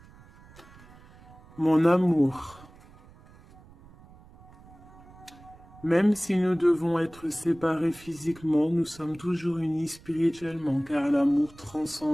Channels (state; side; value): noise; right; rumble, 23 dB below the sound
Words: Mon amour. Même si nous devons être séparés physiquement, nous sommes toujours unis spirituellement, car l'amour